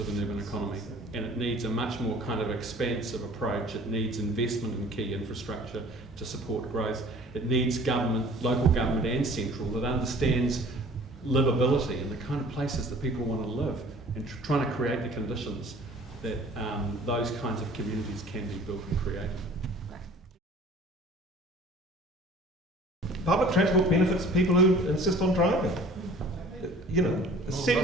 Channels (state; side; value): normal; both; correlation 0.49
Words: an urban economy, and it needs a much more kind of expansive approach. It needs investment in key infrastructure to support growth. It needs government, local government and central, that understands livability and the kind of places that people want to live, and trying to create the conditions that those kinds of communities can be built and created. Public transport benefits people who insist on driving. You know,